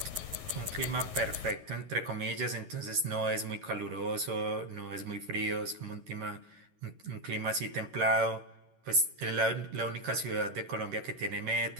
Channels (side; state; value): left; late; 11 ms